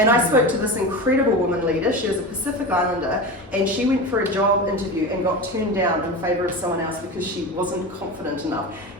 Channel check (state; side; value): normal; both; correlation 0.26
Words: I spoke to this incredible woman leader. She was a Pacific Islander, and she went for a job interview and got turned down in favour of someone else because she wasn't confident enough.